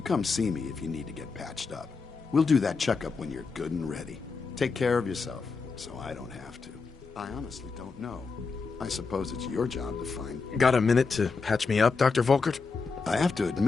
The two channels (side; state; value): right; quieter; 4.7 dB